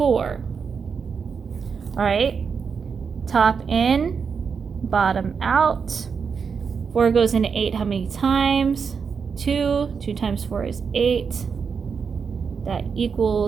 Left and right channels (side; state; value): left; quieter; 5.9 dB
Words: All right, top in, bottom out. 4 goes into 8 how many times? 2. 2 times 4 is 8. That